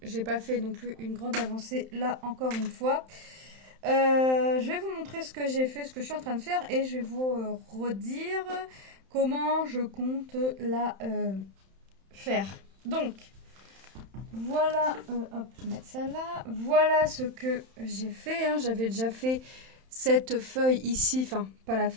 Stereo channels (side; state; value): left; late; 31 ms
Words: j'ai pas fait non plus une grande avancée là encore une fois. Je vais vous montrer ce que j'ai fait, ce que je suis en train de faire et je vais vous redire comment je compte la faire. Donc voilà, hop, je vais mettre ça là. Voilà ce que j'ai fait, hein. J'avais déjà fait cette feuille ici, enfin pas la